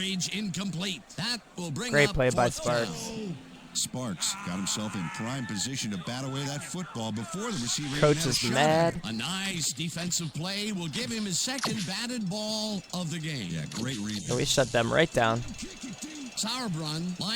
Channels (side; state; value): both; identical; correlation 1.00